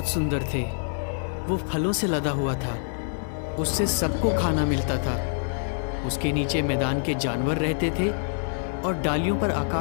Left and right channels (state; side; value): silent; right; digital silence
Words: सुंदर थे। वो फलों से लदा हुआ था। उससे सबको खाना मिलता था। उसके नीचे मैदान के जानवर रहते थे और डालियों पर